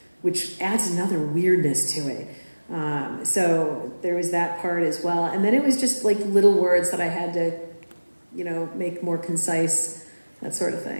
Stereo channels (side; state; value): both; inverted; correlation -1.00